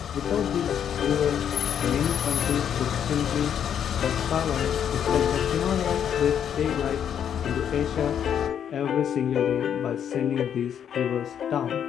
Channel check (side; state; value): right; quieter; 8.8 dB